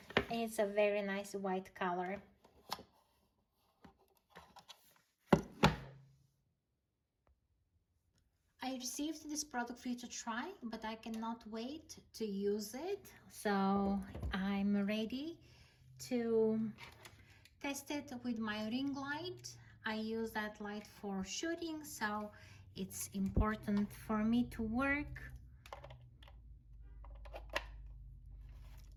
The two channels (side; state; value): both; identical; correlation 1.00